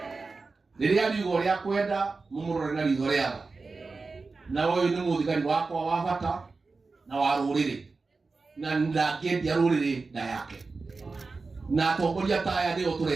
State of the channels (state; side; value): quieter; left; 4.0 dB